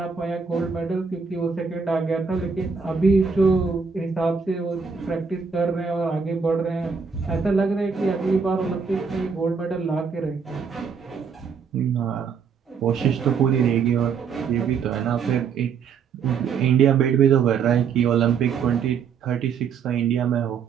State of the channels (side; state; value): left; quieter; 6.0 dB